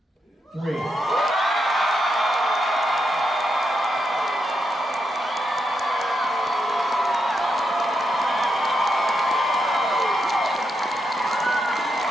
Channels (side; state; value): both; normal; correlation 0.83